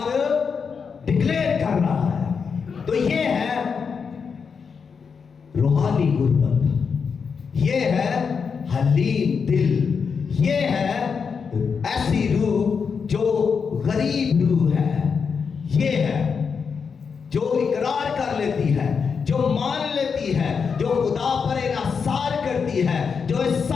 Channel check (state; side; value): quieter; right; 5.9 dB